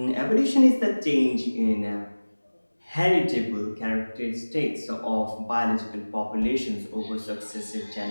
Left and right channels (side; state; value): both; inverted; correlation -1.00